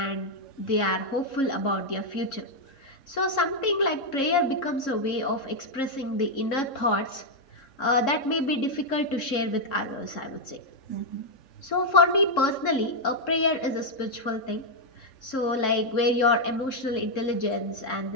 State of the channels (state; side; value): late; right; 3.7 ms